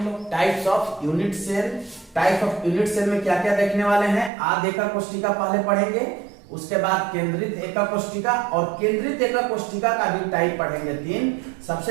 लोग, types of unit cell. Type of unit cell में क्या क्या देखने वाले हैं। आद्य एकक कोष्टिका पहले पढ़ेंगे, उसके बाद केंद्रित एकक कोष्टिका, और केंद्रित एकक कोष्टिका का भी टाइप पढ़ेंगे 3।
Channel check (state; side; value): drops out; left; at 4.3 s